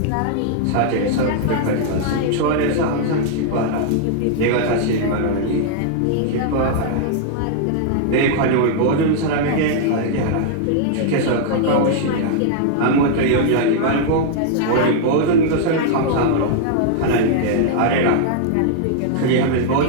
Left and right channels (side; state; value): both; different; correlation -0.01